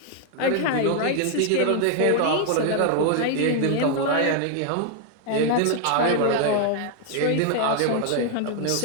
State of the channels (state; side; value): different; both; correlation 0.00